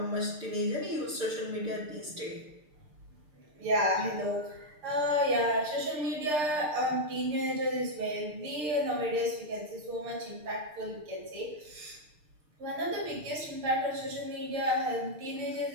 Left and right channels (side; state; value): left; late; 6.7 ms